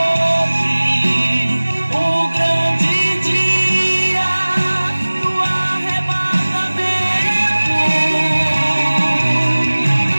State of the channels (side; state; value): both; inverted; correlation -1.00